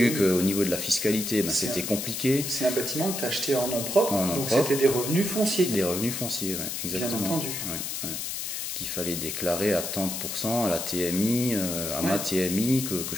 qu'au niveau de la fiscalité c'était compliqué. C'est un bâtiment que tu as acheté en nom propre, donc c'était des revenus fonciers. Des revenus fonciers, ouais, exactement. Bien entendu. Ouais. Qu'il fallait déclarer à 30% à la TMI, ma TMI que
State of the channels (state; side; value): noise; left; hiss, 4 dB below the sound